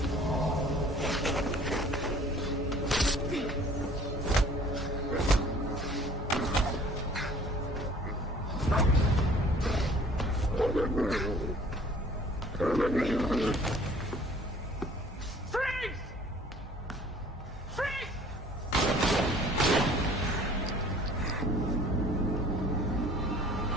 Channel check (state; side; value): normal; both; correlation 0.52